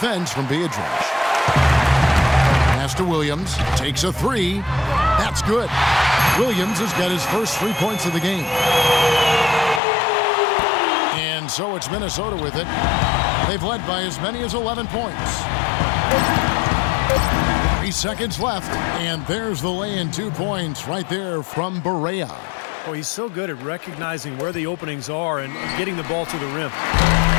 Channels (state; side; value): drops out; right; at 9.8 s